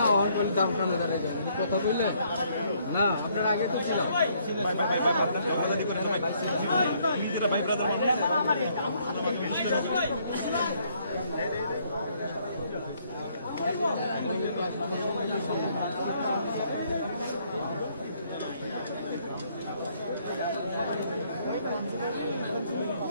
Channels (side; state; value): both; inverted; correlation -0.68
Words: দাম কথা বললে না আপনার আগে